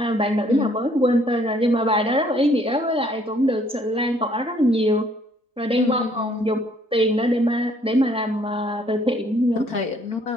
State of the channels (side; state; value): both; normal; correlation 0.63